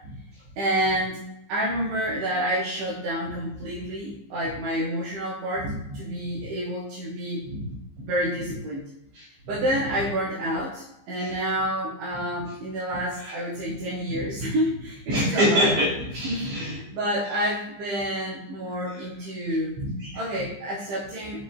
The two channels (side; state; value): left; late; 15 ms